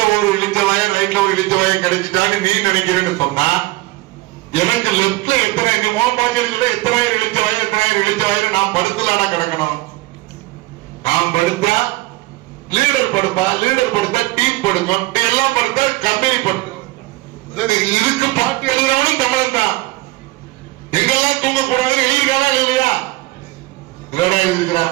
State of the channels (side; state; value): left; quieter; 20.3 dB